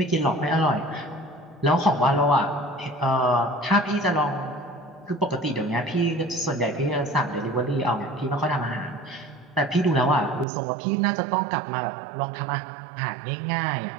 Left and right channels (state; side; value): drops out; left; at 10.5 s